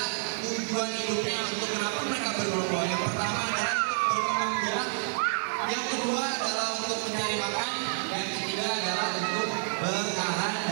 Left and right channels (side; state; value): left; silent; digital silence